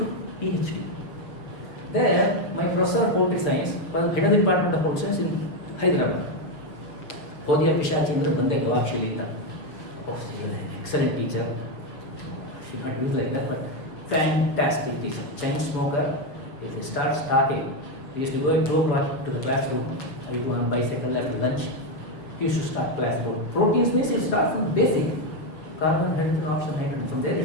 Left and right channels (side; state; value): right; late; 7.0 ms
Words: PhD. There, my professor of political science was head of the department of political science in Hyderabad. Hodya Pishachindra Bande Gavakshilita. Oh, she was an excellent teacher. She not used like that, but fantastic teacher. Chain smoker. If he starts talking, we used to go at 2 o'clock to the classroom. I go on bicycle after lunch. He used to start class. Proteins means it starts from basic. Carbon, hydrogen, oxygen, nitrogen. From there